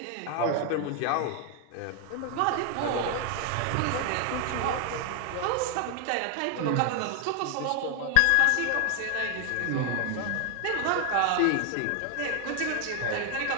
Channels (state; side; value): different; both; correlation 0.00